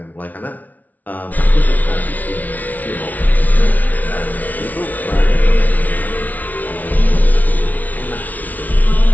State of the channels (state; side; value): late; right; 0.076 ms